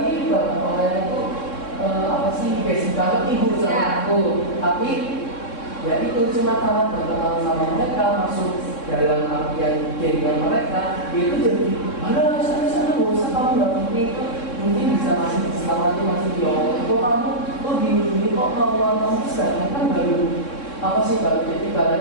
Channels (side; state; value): right; late; 3.6 ms